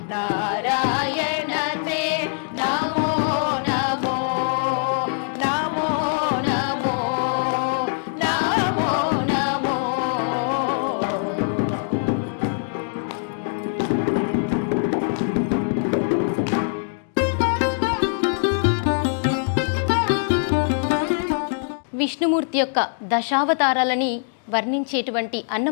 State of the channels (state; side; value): silent; right; digital silence